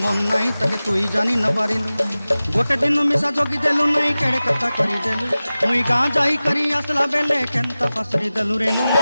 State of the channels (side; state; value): both; inverted; correlation -0.96